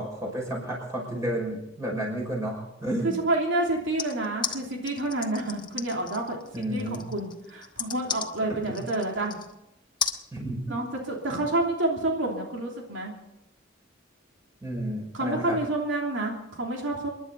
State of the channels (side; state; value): both; normal; correlation 0.12